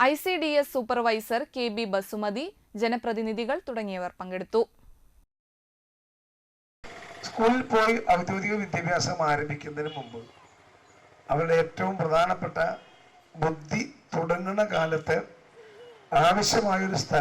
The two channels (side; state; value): both; identical; correlation 1.00